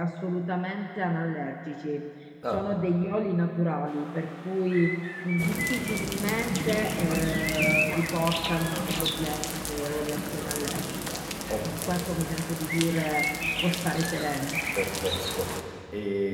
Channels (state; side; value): identical; both; correlation 1.00